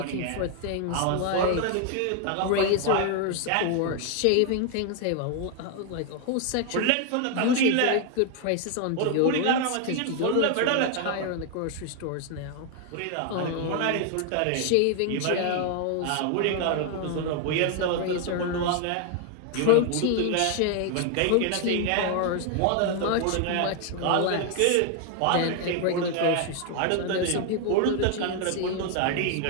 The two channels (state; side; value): different; both; correlation 0.00